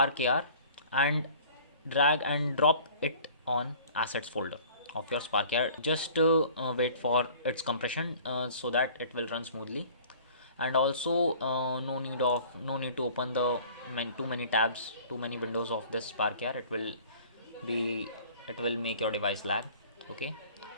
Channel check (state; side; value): inverted; both; correlation -0.48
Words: AR and drag and drop it on assets folder of your Spark AR. Just wait for its compression so that it will run smoothly. And also no need to open the too many tabs, too many windows of this Spark AR. It will make your device lag. Okay,